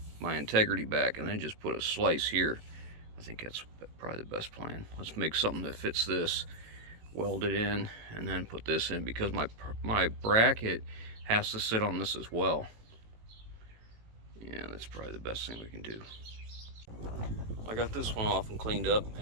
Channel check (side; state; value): left; late; 18 ms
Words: integrity back, and then just put a slice here. I think that's probably the best plan. Let's make something that fits this, weld it in, and then put this in, because my bracket has to sit on this as well. Yeah, that's probably the best thing we can do. I got this one off and cleaned up,